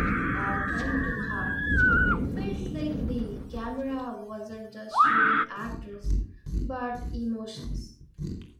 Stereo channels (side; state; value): both; identical; correlation 1.00